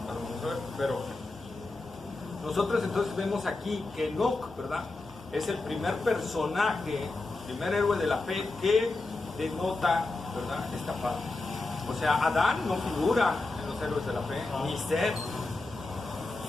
lo vamos a ver, pero nosotros entonces vemos aquí que Enoc, ¿verdad? Es el primer personaje, primer héroe de la fe que denota, ¿verdad? Esta parte. O sea, Adán no figura en los héroes de la fe, ni Seth,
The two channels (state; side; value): quieter; right; 3.3 dB